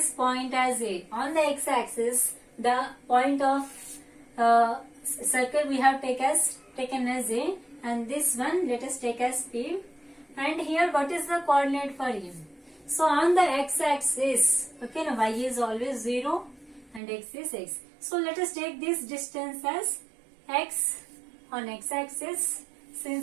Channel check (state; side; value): drops out; left; at 17.0 s